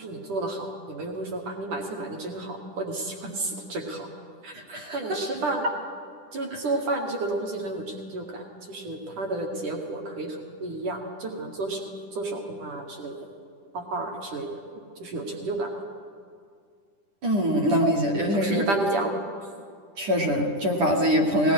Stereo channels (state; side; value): late; left; 10 ms